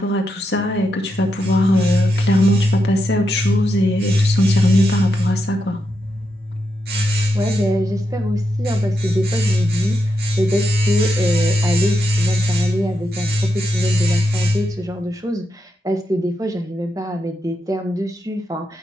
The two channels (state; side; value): normal; both; correlation 0.84